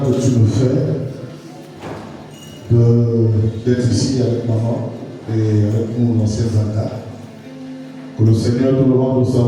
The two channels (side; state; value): both; identical; correlation 1.00